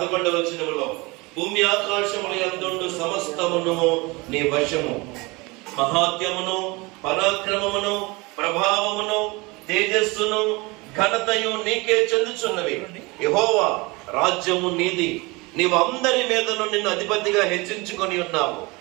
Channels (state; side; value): quieter; left; 25.0 dB